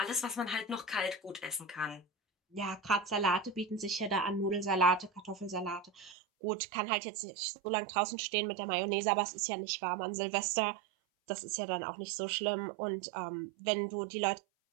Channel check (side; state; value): left; drops out; at 6.2 s